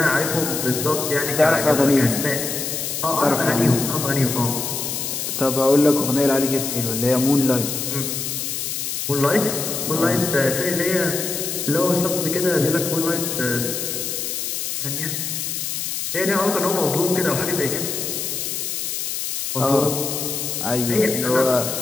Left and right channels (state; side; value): noise; left; hiss, 3 dB below the sound